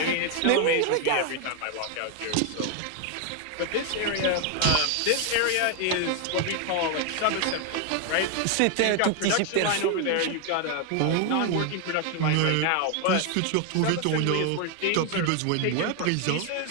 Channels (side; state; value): both; different; correlation 0.01